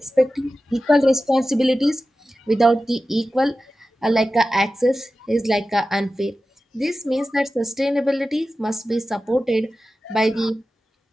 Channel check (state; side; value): normal; both; correlation 0.94